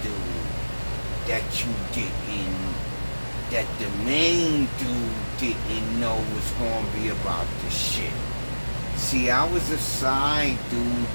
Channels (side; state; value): both; inverted; correlation -1.00